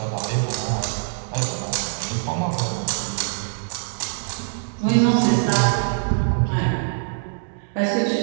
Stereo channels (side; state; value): left; silent; digital silence